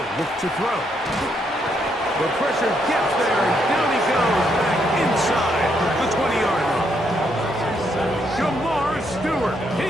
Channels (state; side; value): normal; both; correlation 0.75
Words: look to throw. The pressure gets there, and down he goes back inside the 20-yard line. Jamar Stewart,